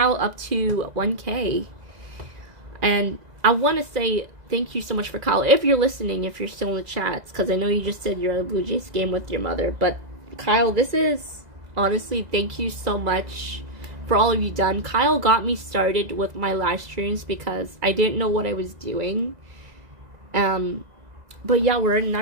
up to 1K, and I want to say thank you so much for Kyle, if you're listening, if you're still in the chats, because I know you just said you're at a Blue Jays game with your mother, but Kyle, this is, honestly, thank you so much for all of you done. Kyle got me started with my live streams because I didn't know what I was doing. But yeah, we're in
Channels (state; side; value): late; left; 2.0 ms